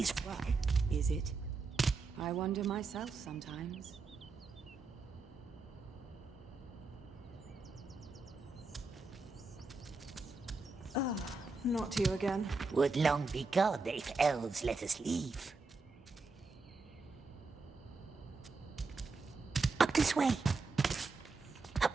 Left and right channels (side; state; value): left; quieter; 3.9 dB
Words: Is it? I wonder myself sometimes. Not you again. Would long be gone if elves let us leave. Up this way. Up.